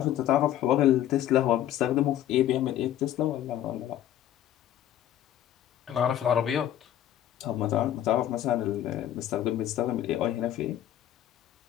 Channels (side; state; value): right; quieter; 11.8 dB